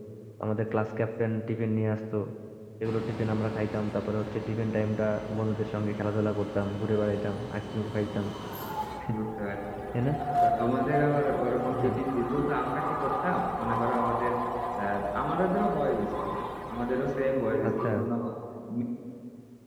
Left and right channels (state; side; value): identical; both; correlation 1.00